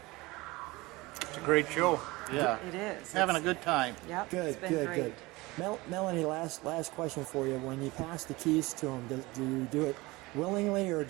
It's a great show. Yeah. It is. Having a good time. Yep. Good, it's been good, great. good. Melanie, last question for you. When you pass the keys to him, do you do it willingly or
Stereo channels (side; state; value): left; quieter; 21.8 dB